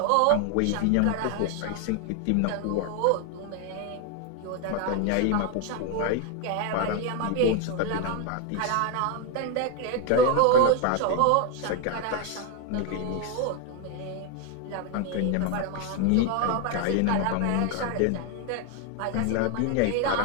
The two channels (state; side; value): different; both; correlation 0.01